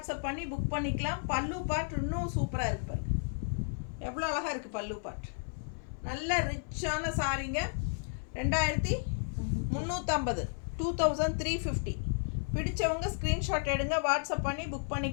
பண்ணி புக் பண்ணிக்கலாம். பல்லு பார்ட் இன்னும் சூப்பராக இருக்குது பாருங்க, எவ்வளோ அழகாக இருக்குது பல்லு பார்ட். நல்ல ரிச்சான சாரீங்க. 2350, 2350. பிடிச்சவங்க ஸ்க்ரீன்ஷாட் எடுங்க, வாட்ஸ்அப் பண்ணி புக்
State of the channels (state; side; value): silent; right; 56 dB below the other